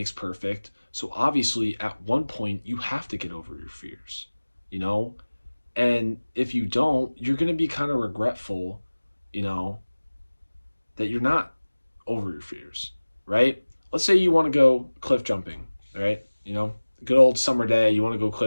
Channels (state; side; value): inverted; both; correlation -1.00